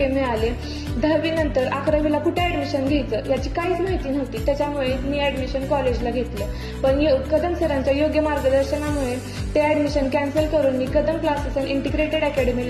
मिळाले. 10वी नंतर 11वीला कुठे ऍडमिशन घ्यायचं याची काहीच माहिती नव्हती, त्याच्यामुळे मी ऍडमिशन कॉलेजला घेतलं. पण कदम सरांच्या योग्य मार्गदर्शनामुळे ते ऍडमिशन कॅन्सल करून मी कदम क्लासेस अँड इंटिग्रेटेड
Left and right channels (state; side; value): identical; both; correlation 1.00